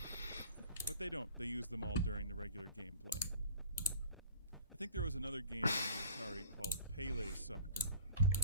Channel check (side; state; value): both; inverted; correlation -0.44